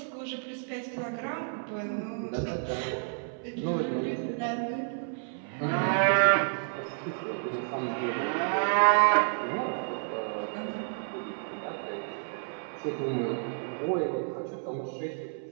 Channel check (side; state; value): left; silent; 57 dB below the other